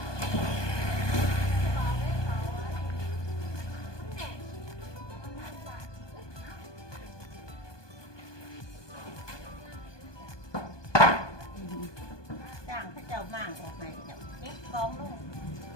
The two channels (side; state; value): right; late; 1.2 ms